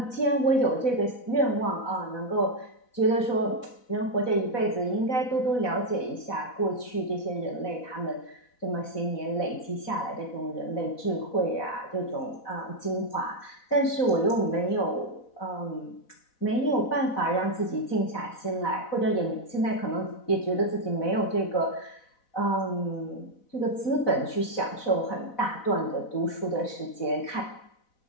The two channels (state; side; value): late; right; 4.0 ms